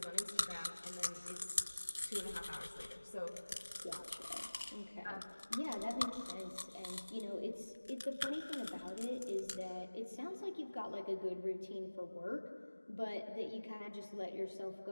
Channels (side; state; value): both; inverted; correlation -1.00